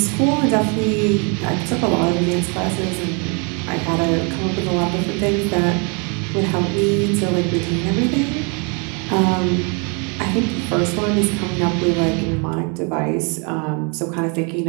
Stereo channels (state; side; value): quieter; left; 34.8 dB